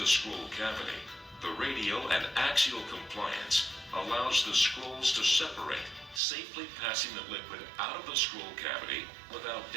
scroll cavity, the radial and axial compliance allows the scrolls to separate, safely passing the liquid out of the scroll cavity without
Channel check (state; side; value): drops out; left; at 6.2 s